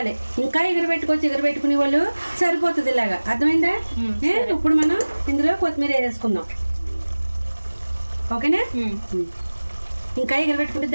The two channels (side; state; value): both; inverted; correlation -1.00